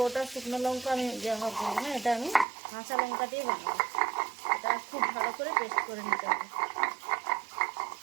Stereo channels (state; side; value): drops out; left; at 2.5 s